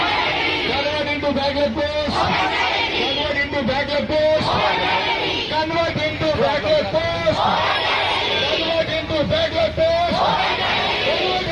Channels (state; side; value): identical; both; correlation 1.00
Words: Convert into backward post. Convert into backward post. Convert into backward post. Convert into backward post. Convert